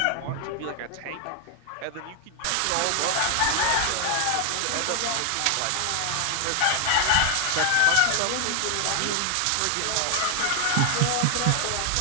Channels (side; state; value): both; different; correlation 0.00